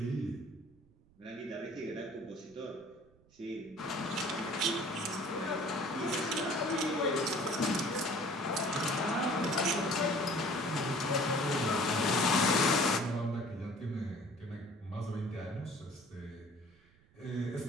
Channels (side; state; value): right; noise; rumble, 30 dB below the sound